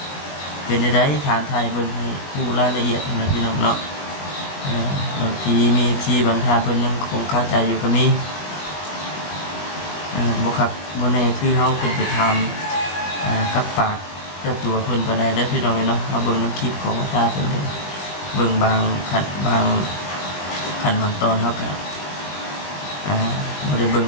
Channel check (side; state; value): right; late; 21 ms